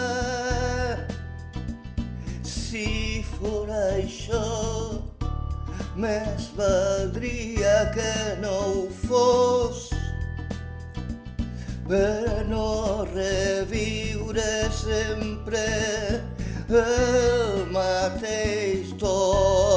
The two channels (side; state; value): both; identical; correlation 1.00